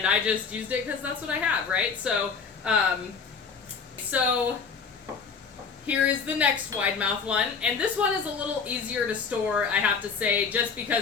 I just used it because that's what I have, right? So here is the next wide mouth one, and this one is a little easier to store, I have to say, just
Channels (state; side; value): quieter; right; 5.5 dB